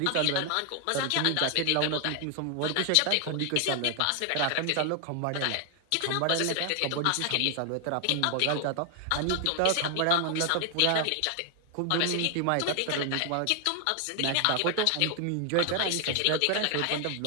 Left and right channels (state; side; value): different; both; correlation 0.00